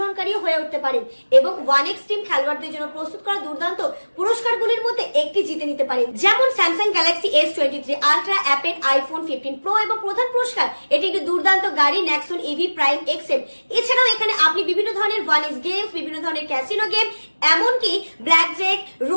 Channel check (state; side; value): inverted; both; correlation -1.00